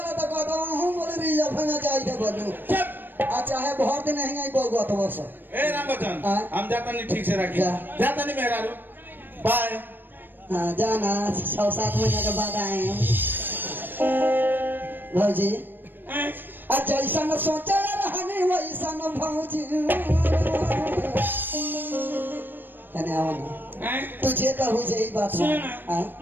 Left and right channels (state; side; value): late; left; 0.094 ms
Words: तो कहता हूँ बोले रिजर्व में चाहिए बोलूं चुप अच्छा है बहुत दिन नहीं आई बहुआ तो बस ए राम बच्चन हाँ। हम जाता नहीं ठीक से राखी जा। जाता नहीं मेहरारू बाय हाँ जाना 6-7 महीने के बाद आए हैं भौजी हैं? जैसा न सोचा रहने वैसा न भौजी कने आओ ना हैं? तुझे कहू जे ई बात सुनो हाँ ना